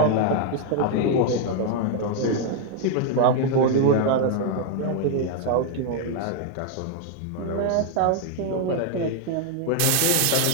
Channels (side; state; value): both; different; correlation 0.00